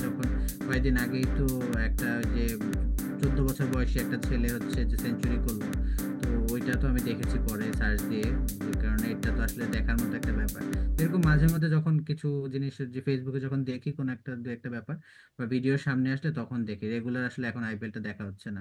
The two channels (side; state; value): both; identical; correlation 1.00